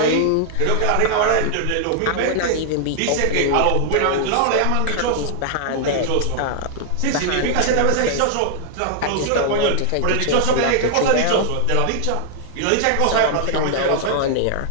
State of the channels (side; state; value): both; different; correlation 0.00